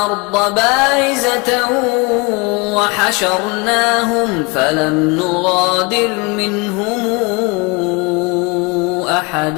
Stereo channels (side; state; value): right; quieter; 28.1 dB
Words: بارزة وحشرناهم فلم نغادر منهم